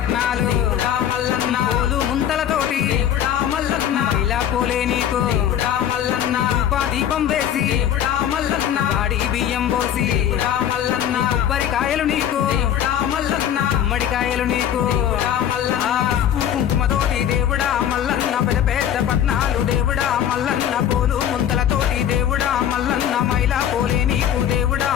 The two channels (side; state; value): right; quieter; 9.9 dB